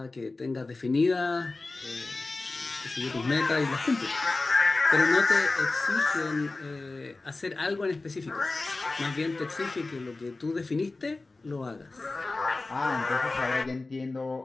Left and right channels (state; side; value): quieter; right; 3.4 dB